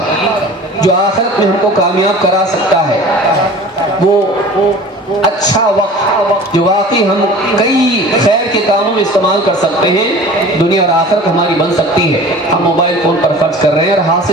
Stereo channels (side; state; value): both; normal; correlation 0.41